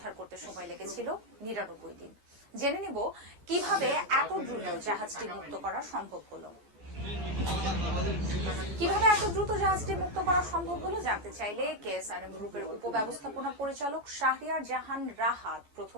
করতে সময় লেগেছিল 99 দিন। জেনে নিব কিভাবে এত দ্রুত জাহাজটি মুক্ত করা সম্ভব হলো। কিভাবে এত দ্রুত জাহাজটি মুক্ত করা সম্ভব হলো জানতে চাইলে কেএসআরএম গ্রুপের উপব্যবস্থাপনা পরিচালক শাহরিয়ার জাহান রাহাত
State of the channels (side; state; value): left; late; 14 ms